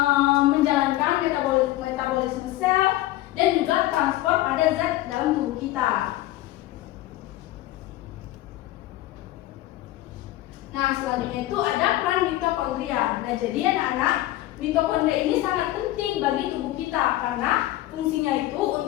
menjalankan metabolisme sel dan juga transport pada zat dalam tubuh kita. Nah, selanjutnya itu ada peran mitokondria. Nah, jadi anak-anak, mitokondria ini sangat penting bagi tubuh kita karena fungsinya itu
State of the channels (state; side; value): quieter; right; 15.8 dB